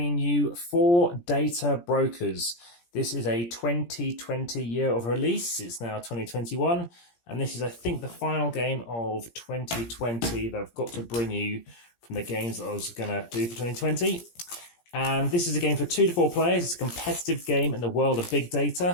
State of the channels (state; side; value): late; right; 17 ms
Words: you 4 data brokers. This is a 2020 year of release. It's now 2021, and this is, I think, the final game of 2020 that I've got to bring you from the games that I was going to do for 2020. And this is a game for 2 to 4 players. It's a competitive game in the world of big